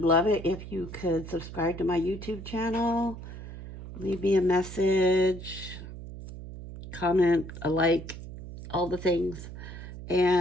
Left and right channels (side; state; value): right; noise; hum, 12 dB below the sound